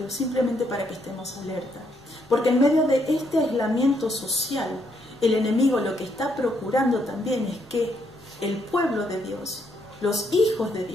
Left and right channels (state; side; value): normal; both; correlation 0.74